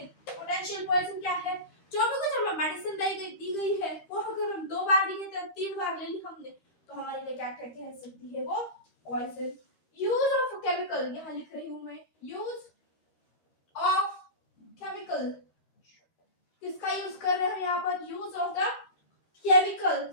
पोटेंशियल पॉइजन क्या है, जो भी कुछ हमें मेडिसिन दी गई है वो अगर हम 2 बार ली गई, 3 बार ले ली हमने, तो हमारे लिए क्या कह सकती है, वो पॉइजन। यूज ऑफ केमिकल, यहाँ लिख रही हूँ मैं, यूज ऑफ केमिकल, किसका यूज कर रहे हैं यहाँ पर, use of the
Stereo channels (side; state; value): right; late; 13 ms